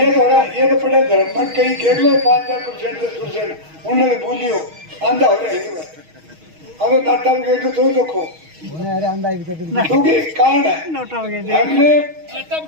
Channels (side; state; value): left; late; 6.3 ms